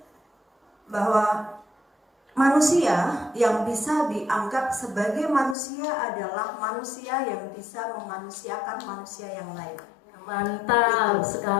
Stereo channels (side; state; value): right; drops out; at 5.6 s